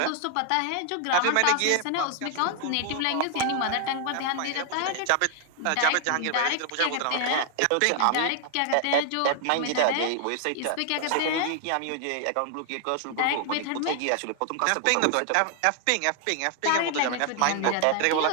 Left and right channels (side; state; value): both; different; correlation 0.00